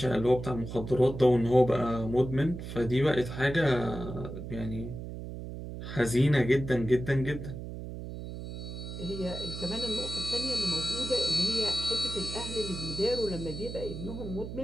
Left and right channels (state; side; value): noise; right; hum, 8 dB below the sound